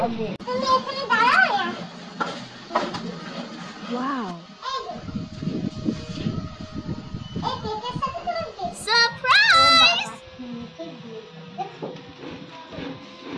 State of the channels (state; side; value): identical; both; correlation 1.00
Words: তুমি এখানে দাঁড়াও। ওয়াও, এই কেকের সাথে তোমার সারপ্রাইজ।